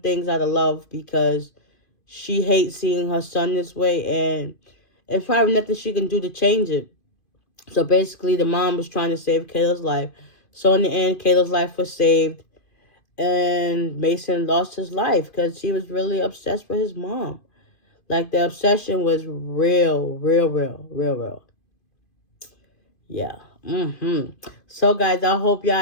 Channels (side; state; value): right; late; 2.5 ms